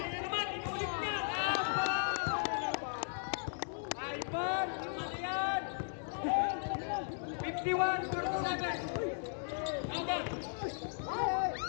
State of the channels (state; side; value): silent; right; digital silence